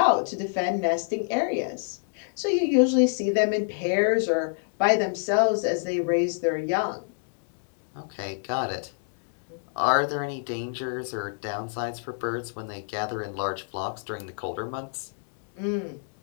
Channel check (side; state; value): right; silent; digital silence